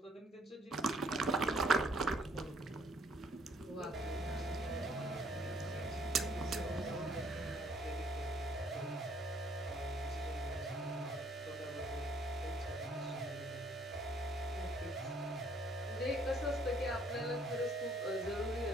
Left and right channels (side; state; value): both; normal; correlation 0.64